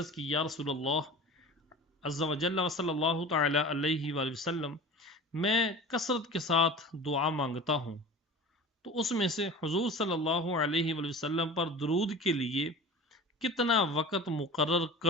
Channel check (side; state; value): both; normal; correlation 0.37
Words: کی یا رسول اللہ عز و جل و صلی اللہ تعالی علیہ وآلہ وسلم میں کثرت کے ساتھ دعا مانگتا ہوں تو اس میں سے حضور صلی اللہ علیہ وآلہ وسلم پر درود کے لیے کتنا وقت مقرر